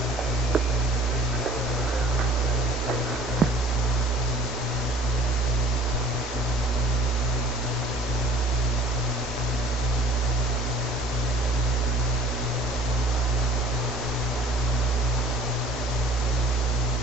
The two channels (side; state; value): both; normal; correlation 0.50